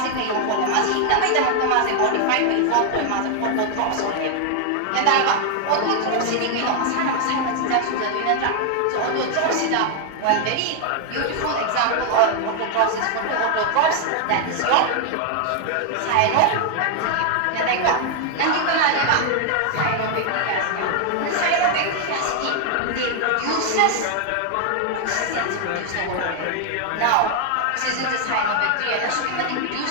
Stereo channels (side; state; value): both; different; correlation 0.00